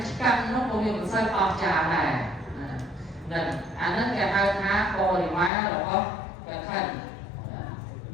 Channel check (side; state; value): right; drops out; at 5.5 s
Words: ស្កាត់នោះក៏វាមិនសូវអស្ចារ្យដែរហ្នឹងអាហ្នឹងគេហៅថាបរិវាររបស់កឋិន